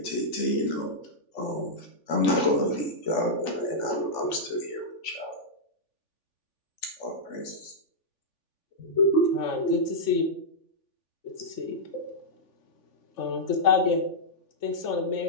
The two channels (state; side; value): late; right; 3.5 ms